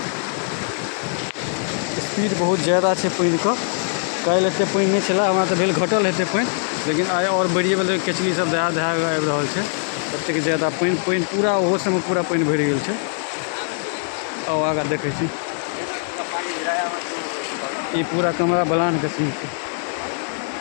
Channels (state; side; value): silent; right; 59 dB below the other